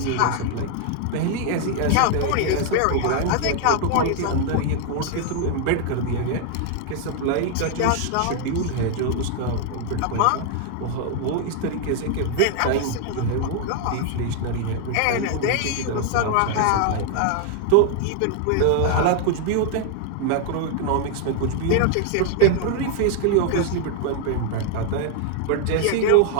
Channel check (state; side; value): different; both; correlation 0.00